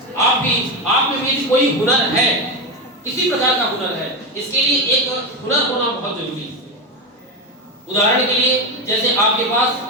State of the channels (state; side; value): normal; both; correlation 0.15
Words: आप में भी कोई हुनर है, किसी प्रकार का हुनर है, इसके लिए एक हुनर होना बहुत जरूरी है। उदाहरण के लिए जैसे आपके पास